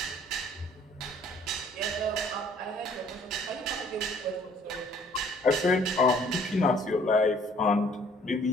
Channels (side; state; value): both; normal; correlation 0.58